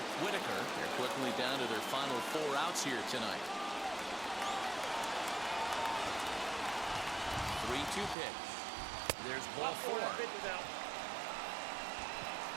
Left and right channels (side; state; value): left; drops out; at 8.2 s